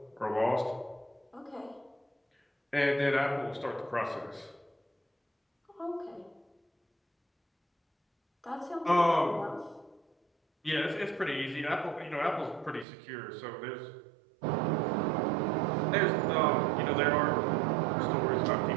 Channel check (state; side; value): drops out; left; at 12.9 s